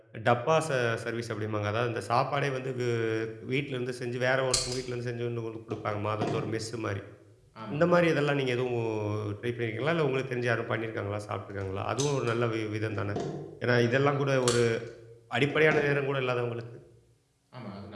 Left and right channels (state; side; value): identical; both; correlation 1.00